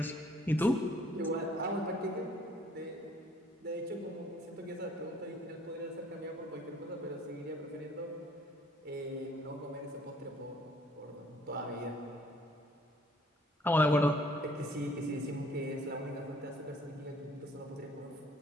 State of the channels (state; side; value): normal; both; correlation 0.59